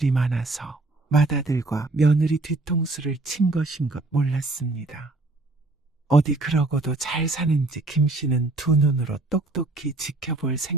많아서 맏아들과 며느리 뒤통수를 친 것인 것 몰랐습니다. 어디 그러고도 잘 사는지 김 씨는 두 눈으로 똑똑히 지켜볼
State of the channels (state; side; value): quieter; left; 3.1 dB